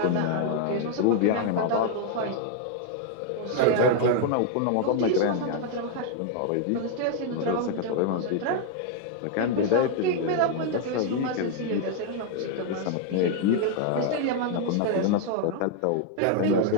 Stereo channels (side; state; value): both; different; correlation 0.00